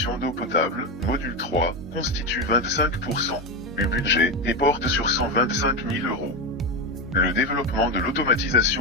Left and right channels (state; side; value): normal; both; correlation 0.14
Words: d'eau potable, module 3, constitue 25% du budget et porte sur 125 000 €. Le développement de